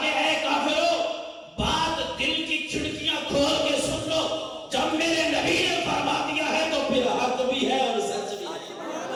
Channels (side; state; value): both; identical; correlation 1.00